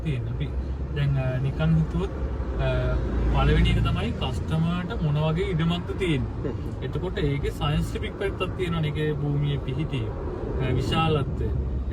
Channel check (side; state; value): both; identical; correlation 1.00